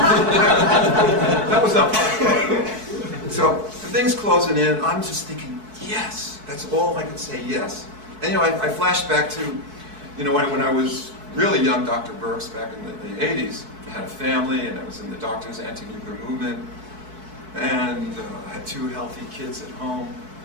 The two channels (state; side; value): late; left; 4.6 ms